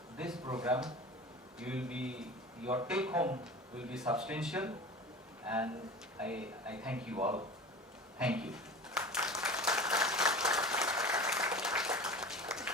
this program, your take home will be substantial, and I thank you all. Thank you.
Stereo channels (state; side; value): normal; both; correlation 0.36